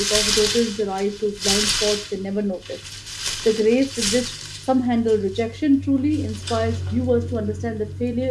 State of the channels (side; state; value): both; identical; correlation 1.00